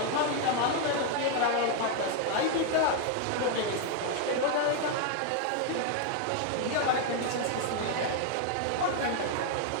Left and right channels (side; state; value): both; different; correlation 0.00